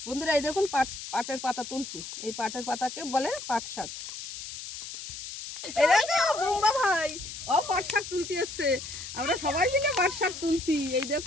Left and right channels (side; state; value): left; noise; hiss, 10 dB below the sound